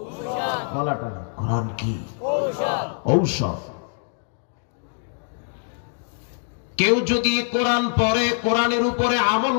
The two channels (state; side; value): silent; right; 61 dB below the other